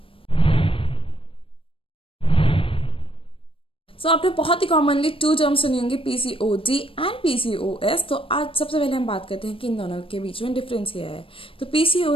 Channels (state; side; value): late; right; 0.26 ms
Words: So आपने बहुत ही कॉमनली 2 टर्म्स सुनी होंगी, पीसीओडी एंड पीसीओएस। तो आज सबसे पहले हम बात करते हैं कि इन दोनों के बीच में डिफरेंस क्या है। तो